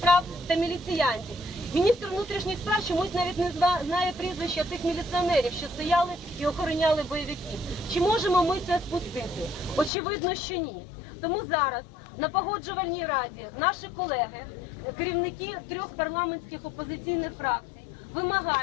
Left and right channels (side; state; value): right; drops out; at 9.9 s